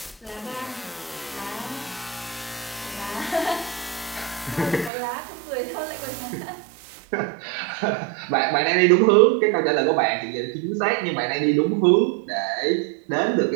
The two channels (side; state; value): left; drops out; at 4.9 s